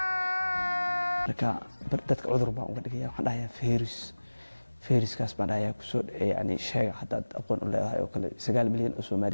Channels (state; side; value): inverted; both; correlation -1.00